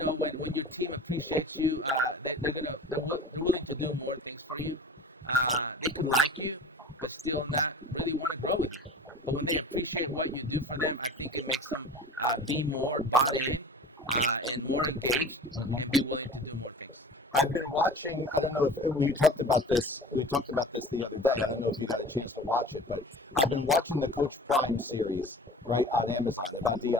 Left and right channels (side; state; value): both; normal; correlation 0.40